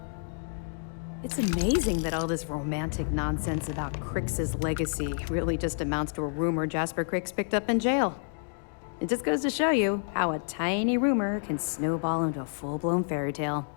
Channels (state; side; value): silent; right; digital silence